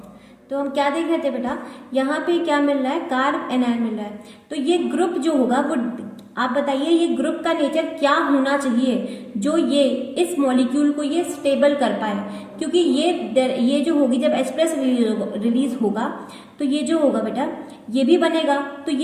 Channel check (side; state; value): both; identical; correlation 1.00